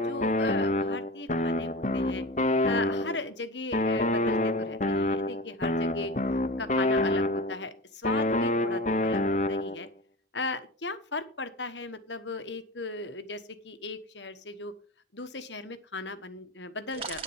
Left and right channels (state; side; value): normal; both; correlation 0.30